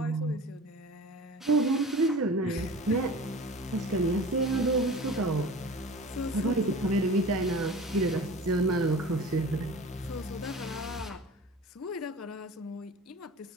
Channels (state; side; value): normal; both; correlation 0.38